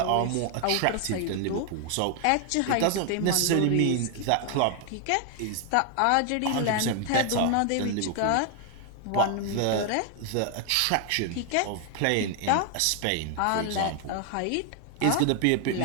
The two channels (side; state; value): both; different; correlation 0.00